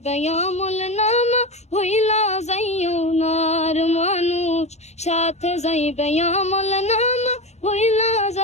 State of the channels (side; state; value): right; late; 0.32 ms